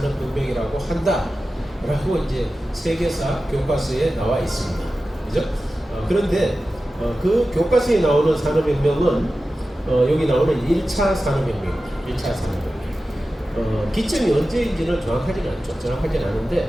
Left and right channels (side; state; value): both; normal; correlation 0.94